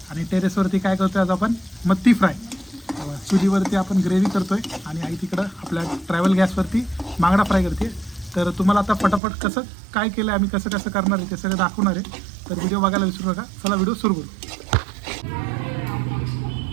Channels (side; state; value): left; drops out; at 9.2 s